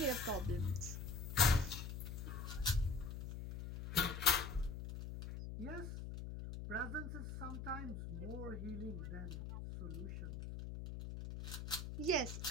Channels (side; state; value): left; noise; hum, 7 dB below the sound